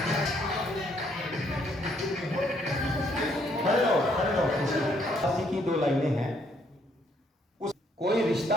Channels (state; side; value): normal; both; correlation 0.69